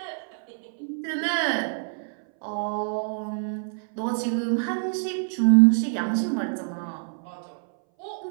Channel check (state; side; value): silent; left; 60 dB below the other